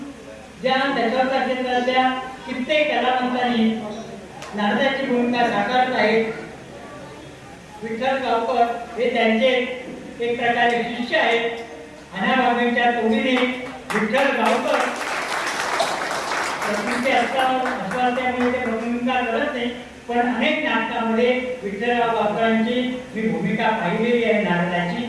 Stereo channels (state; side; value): identical; both; correlation 1.00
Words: ज्या दशावतार क्षेत्रातल्या कित्येक कलावंतांनी नारदाची भूमिका साकारत आहेत. विठ्ठल गावकर हे त्यांचे एक प्रकारे शिष्य आहेत. अनाबागेच्या तोडीने विठ्ठल गावकर प्रकृती असल्यामुळे ते भूमिका करत नाही, पण अनेक नाटकामध्ये विठ्ठलराव गावकरांची मी भूमिका पाहिलेली आहे नारदाची.